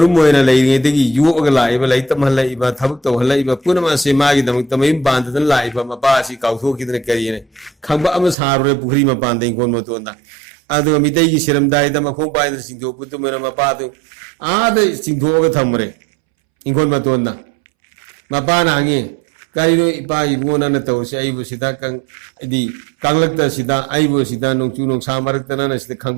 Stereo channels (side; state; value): left; drops out; at 8.3 s